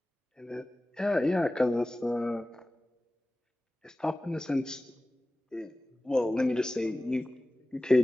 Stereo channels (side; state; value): both; normal; correlation 0.97